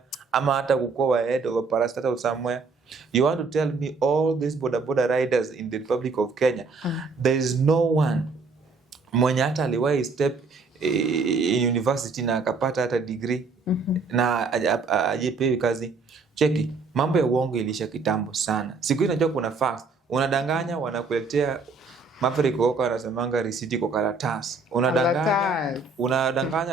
ama hata kukua head of a parastatal somewhere. You want to tell me all these boda riders in the Republic of Kenya, there is no one mwenye hata aliwahi step in university na akapata hata degree na ajepewi kazi? Cheki, mambo ya uongo ilisha kitambo sana. Siku hii najua kuna facts. Unadanganya, wanakuletea Maverick Oka wanasemanga risiti kwa karatasi.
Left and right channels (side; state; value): left; quieter; 4.2 dB